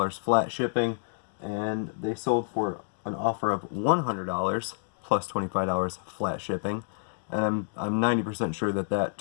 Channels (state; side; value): silent; right; digital silence